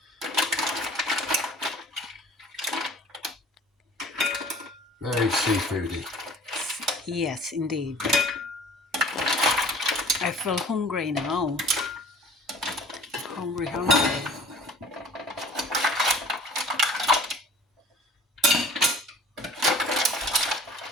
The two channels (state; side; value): normal; both; correlation 0.47